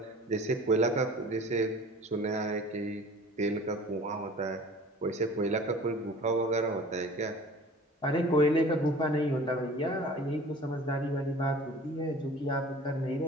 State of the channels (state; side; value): normal; both; correlation 0.44